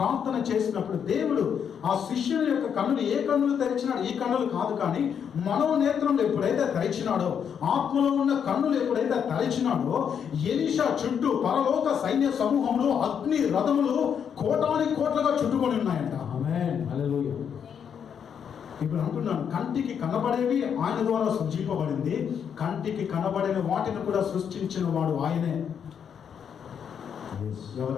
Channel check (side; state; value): right; quieter; 7.8 dB